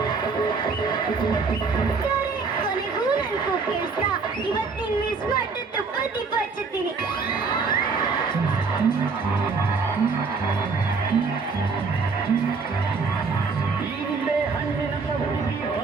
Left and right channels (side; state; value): left; quieter; 4.7 dB